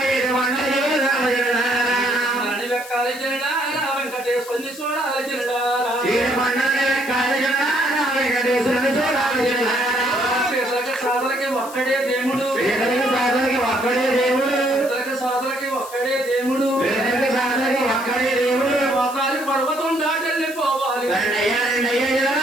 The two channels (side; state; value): left; noise; hiss, 16 dB below the sound